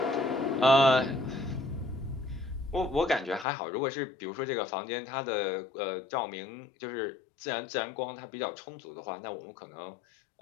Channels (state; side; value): drops out; right; at 3.5 s